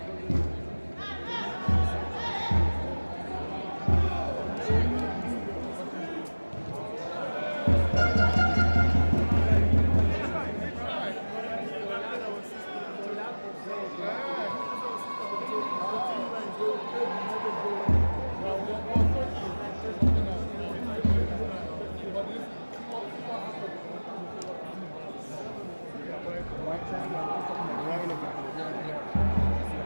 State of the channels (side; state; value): both; inverted; correlation -1.00